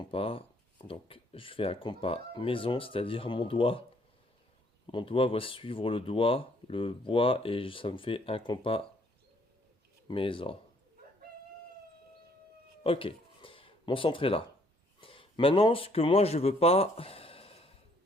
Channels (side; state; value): both; normal; correlation 0.65